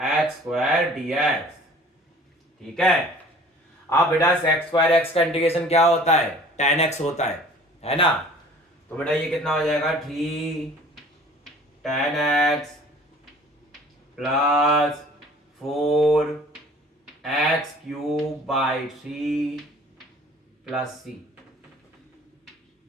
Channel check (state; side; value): normal; both; correlation 0.49